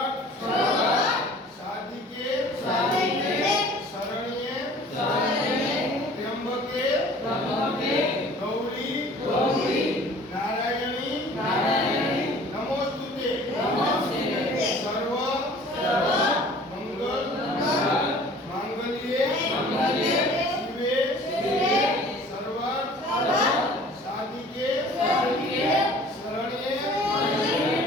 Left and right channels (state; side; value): normal; both; correlation 0.48